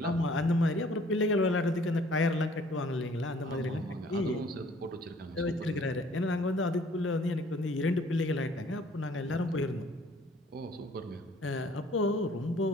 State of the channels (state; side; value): normal; both; correlation 0.57